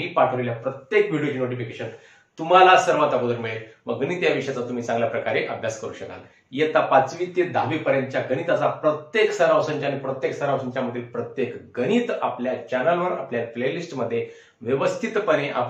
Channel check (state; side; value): identical; both; correlation 1.00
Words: पाठवलेल्या प्रत्येक व्हिडिओची नोटिफिकेशन तुम्हाला सर्वात अगोदर मिळेल व गणित या विषयाचा तुम्ही चांगल्या प्रकारे अभ्यास करू शकाल। इयत्ता 5वी ते 10वी पर्यंतच्या गणिताचा प्रत्येक सराव संच आणि प्रत्येक सराव संचामधील प्रत्येक गणित आपल्या चॅनलवर आपल्या प्लेलिस्ट मध्ये व्यवस्थितपणे